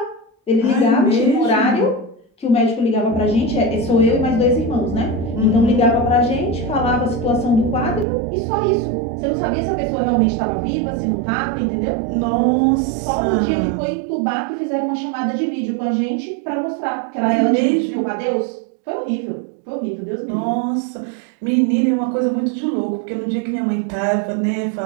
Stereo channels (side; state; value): left; drops out; at 8.1 s